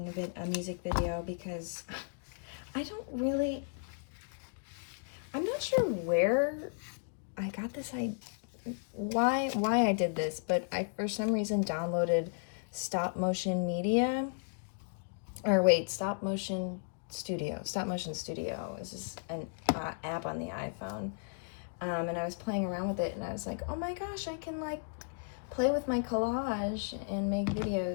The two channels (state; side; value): silent; right; digital silence